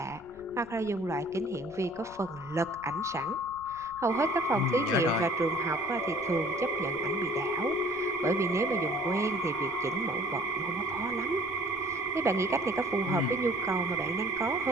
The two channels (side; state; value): left; noise; rumble, 22 dB below the sound